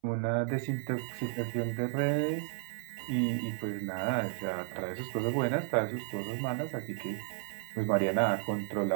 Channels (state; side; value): silent; left; 56 dB below the other